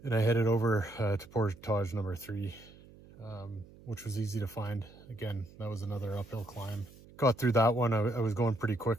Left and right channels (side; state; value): right; noise; hum, 22 dB below the sound